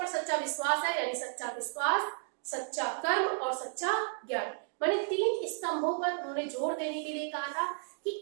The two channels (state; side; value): silent; left; 56 dB below the other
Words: सच्चा विश्वास है यानी सच्चा विश्वास, सच्चा कर्म और सच्चा ज्ञान। माने 3 स्तंभों पर उन्होंने जोर देने के लिए कहा था कि